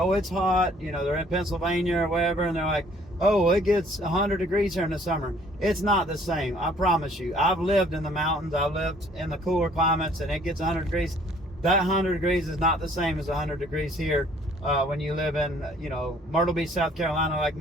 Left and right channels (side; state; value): both; normal; correlation 0.58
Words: it's hot. They're in Pennsylvania or wherever, and they're like, oh, it gets 100 degrees here in the summer. It's not the same, I promise you. I've lived in the mountains, I've lived in the cooler climates, and it gets 100 degrees. That 100 degrees is not the same as 100 degrees here when you live in, Myrtle Beach, South Carolina, like